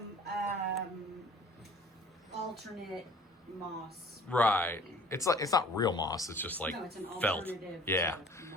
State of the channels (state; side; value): normal; both; correlation 0.49